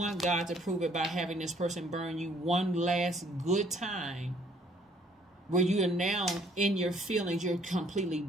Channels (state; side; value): normal; both; correlation 0.62